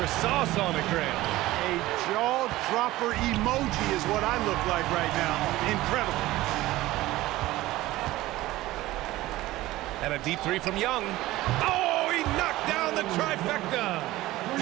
sauce on it, Grant. A jaw-dropper emoji is what I look like right now. Incredible. And a deep 3 from Young. Oh, he knocked down the trifecta.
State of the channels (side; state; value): left; quieter; 17.2 dB